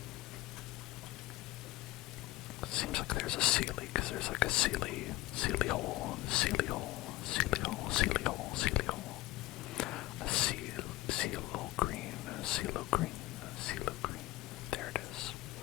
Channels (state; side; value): quieter; right; 17.8 dB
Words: Seems like there's a Sealy, because there's like a Sealy hole, Sealy hole, Sealy hole, Sealy hole, Sealy hole. A Sealo green, Sealo green, Sealo green. There it is.